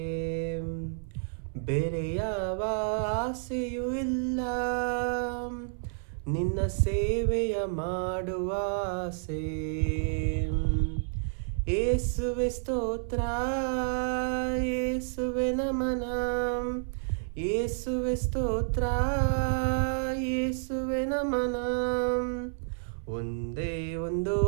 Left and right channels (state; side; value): silent; left; 58 dB below the other